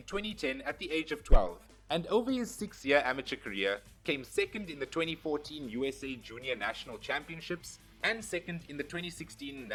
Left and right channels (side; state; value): both; identical; correlation 1.00